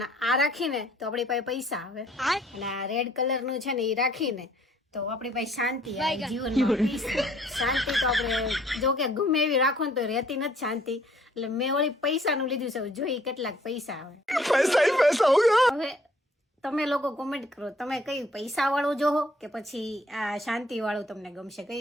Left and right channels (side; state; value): both; normal; correlation 0.61